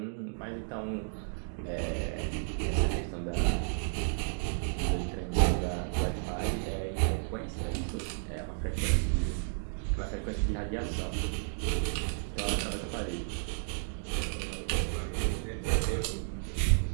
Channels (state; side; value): silent; left; digital silence